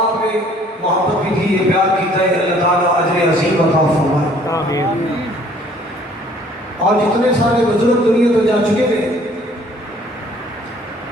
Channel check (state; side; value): normal; both; correlation 0.57